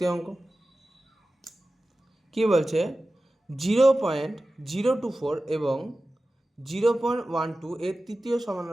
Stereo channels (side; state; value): both; normal; correlation 0.95